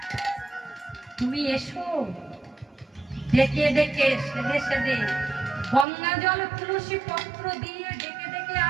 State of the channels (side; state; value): left; drops out; at 5.9 s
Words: তুমি এসো। ডেকে ডেকে সেদে সেদে গঙ্গা জল তুলসী পত্র দিয়ে ডেকে ডেকে